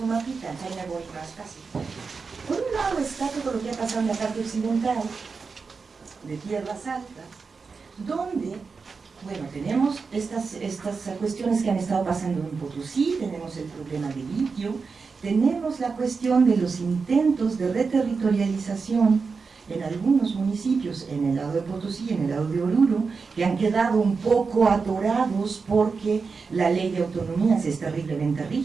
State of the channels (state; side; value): quieter; left; 4.9 dB